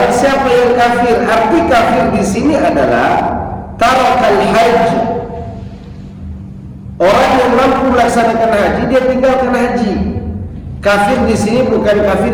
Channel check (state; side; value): identical; both; correlation 1.00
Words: siapa yang kafir. Arti kafir di sini adalah tarakal haji. Orang yang mampu melaksanakan haji, dia tinggalkan haji. Kafir di sini bukan